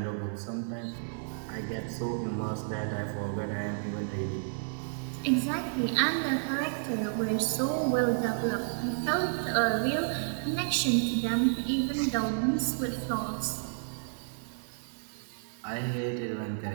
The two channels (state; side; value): silent; left; digital silence